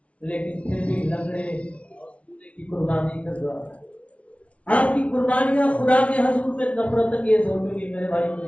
لیکن پھر بھی لنگڑے کی قربانی کر رہا ہے۔ آپ کی قربانیاں خدا کے حضور میں نفرت انگیز ہو چکی میرے بھائی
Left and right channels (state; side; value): late; right; 0.063 ms